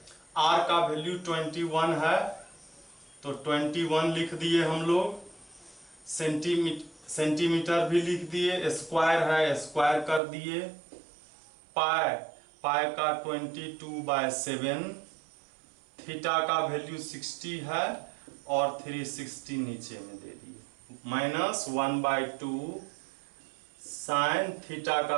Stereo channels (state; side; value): drops out; left; at 10.2 s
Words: आर का वैल्यू 21 है तो 21 लिख दिए हम लोग, सेंटीमीटर भी लिख दिए, स्क्वायर है स्क्वायर कर दिए, पाई का 22/7, थीटा का वैल्यू 60 है और 360 नीचे में दे दिए, माइनस 1/2 साइन थीटा